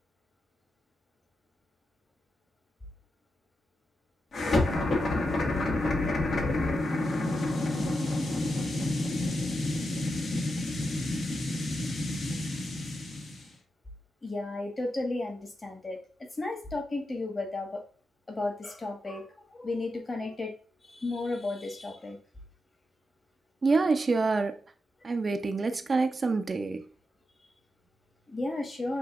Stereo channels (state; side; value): normal; both; correlation 0.87